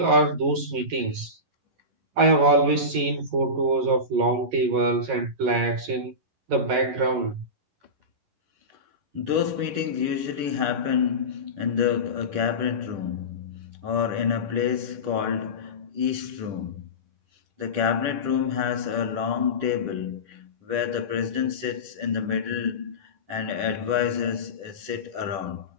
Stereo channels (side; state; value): left; late; 11 ms